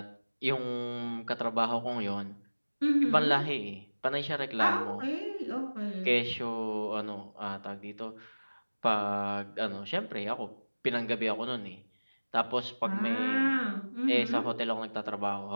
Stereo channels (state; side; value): inverted; both; correlation -1.00